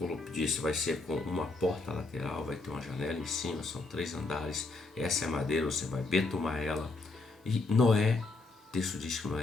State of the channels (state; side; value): quieter; right; 3.5 dB